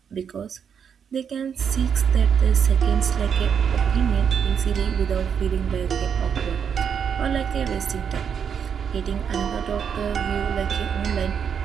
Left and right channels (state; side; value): quieter; left; 7.4 dB